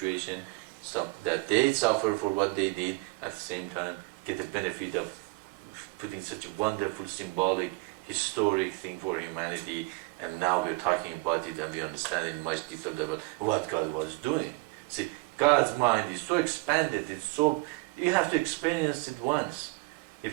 that they suffer for what they did, at the same time get the benefit of putting such a wonderful, symbolic, historic thing for humanity, and now we're talking about it and we understand it much deeper level what God was doing. See, God's mind is so expanded, you have to experience it once.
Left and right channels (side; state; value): left; quieter; 26.1 dB